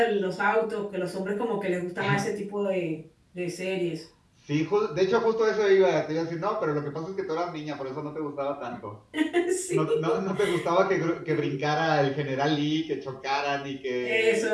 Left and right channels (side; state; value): both; identical; correlation 1.00